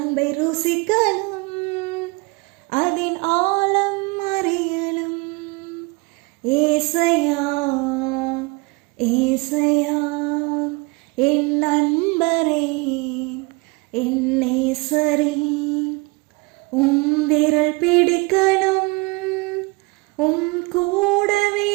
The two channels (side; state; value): left; quieter; 26.9 dB